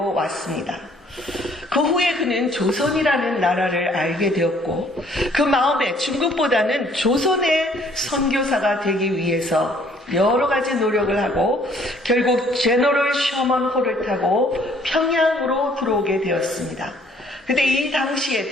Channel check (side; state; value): both; normal; correlation 0.60